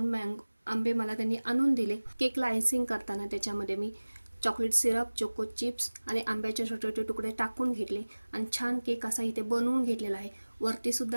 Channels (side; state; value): both; inverted; correlation -1.00